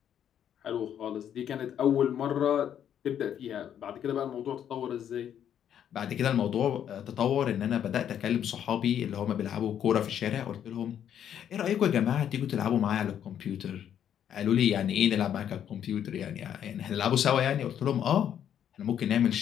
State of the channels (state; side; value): quieter; right; 9.6 dB